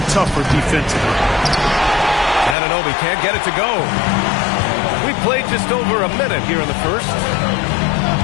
tougher defensively. Anunoby can't get it to go. We played just over a minute here in the first.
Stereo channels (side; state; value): right; drops out; at 2.6 s